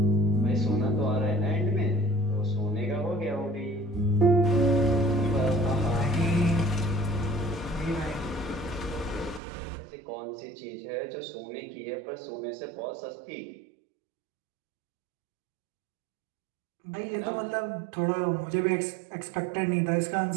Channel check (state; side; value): drops out; left; at 9.4 s